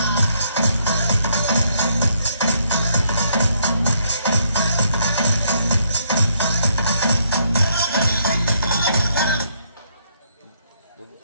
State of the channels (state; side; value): inverted; both; correlation -0.72